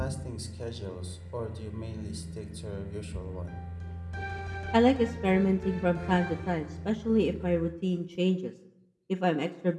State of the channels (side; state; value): both; identical; correlation 1.00